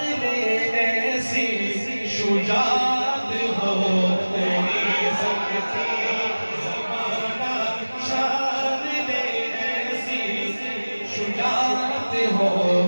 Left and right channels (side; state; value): both; inverted; correlation -1.00